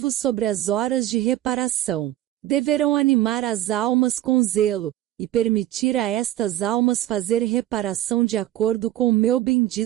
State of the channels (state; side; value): quieter; left; 13.8 dB